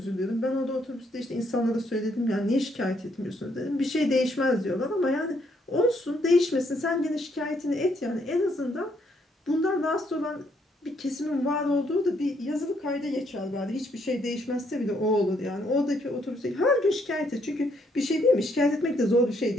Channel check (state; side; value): normal; both; correlation 0.71